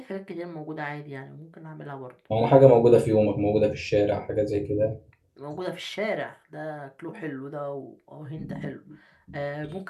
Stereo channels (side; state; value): both; identical; correlation 1.00